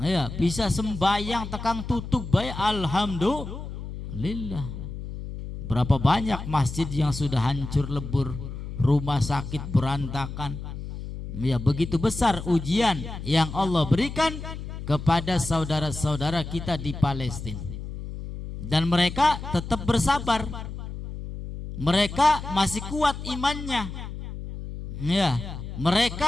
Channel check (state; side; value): noise; left; hum, 8 dB below the sound